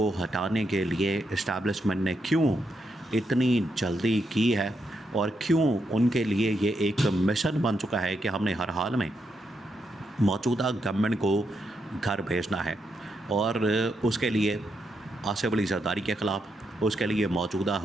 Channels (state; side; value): normal; both; correlation 0.81